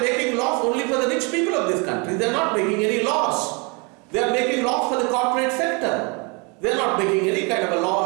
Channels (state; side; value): quieter; left; 31.2 dB